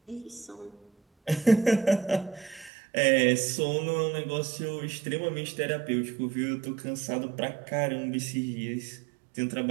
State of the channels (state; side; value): drops out; left; at 2.7 s